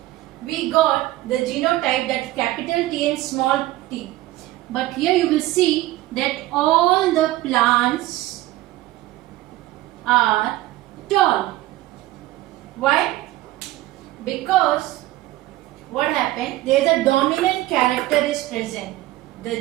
we got the genotype that capital T and small t. But here you will see that all the plants are tall. Why? Because what happened? There is a dominant character is present.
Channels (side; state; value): left; quieter; 16.8 dB